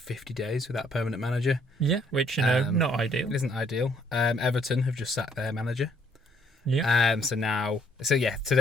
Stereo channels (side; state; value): both; normal; correlation 0.65